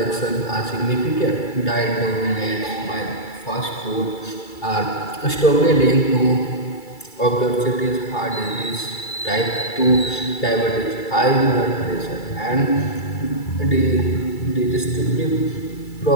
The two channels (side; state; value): right; late; 2.3 ms